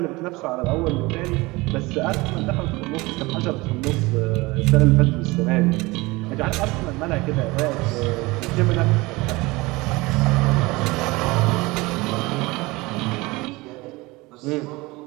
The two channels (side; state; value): left; quieter; 22.5 dB